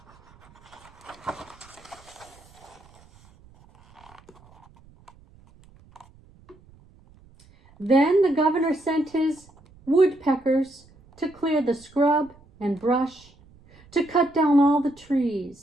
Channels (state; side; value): noise; right; rumble, 27 dB below the sound